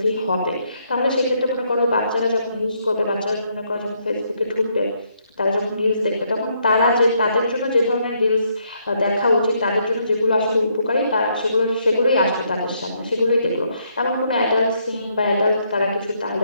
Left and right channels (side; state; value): both; inverted; correlation -0.73